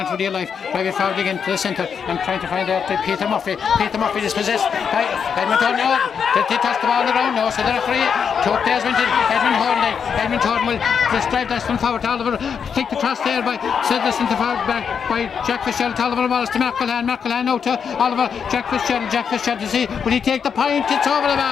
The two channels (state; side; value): quieter; right; 6.9 dB